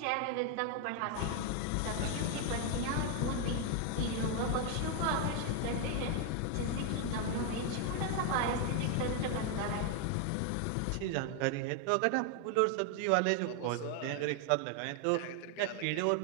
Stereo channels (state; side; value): different; both; correlation 0.00